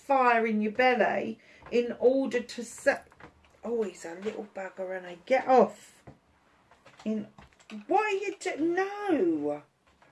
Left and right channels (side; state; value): both; identical; correlation 1.00